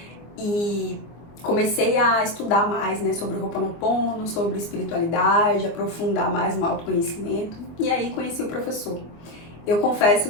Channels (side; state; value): right; late; 24 ms